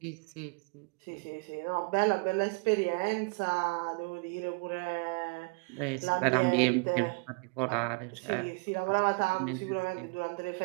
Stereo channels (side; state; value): left; quieter; 31.0 dB